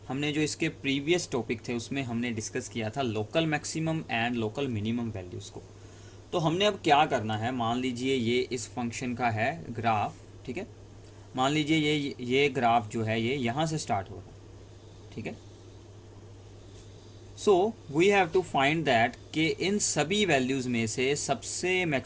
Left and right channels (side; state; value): both; identical; correlation 1.00